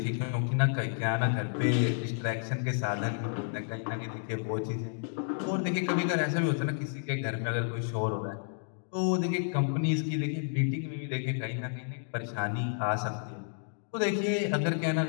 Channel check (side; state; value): right; silent; digital silence